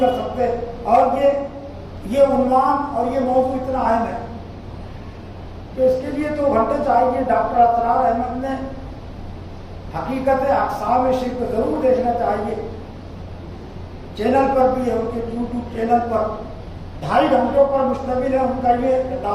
کر سکتے؟ اور یہ عنوان اور یہ موضوع اتنا اہم ہے کہ اس کے لیے تو گھنٹے چاہیے. ڈاکٹر اسرار احمد نے حقیقت اقسام شرک ضرور دیکھنا چاہیے. چینل پر بھی ہے، ان کے یوٹیوب چینل پر 2.5 گھنٹوں پر مشتمل ہے ان کا یہ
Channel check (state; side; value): identical; both; correlation 1.00